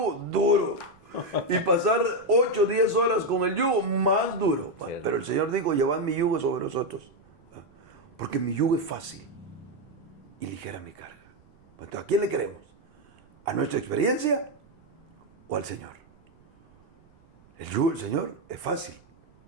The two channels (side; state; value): right; noise; rumble, 30 dB below the sound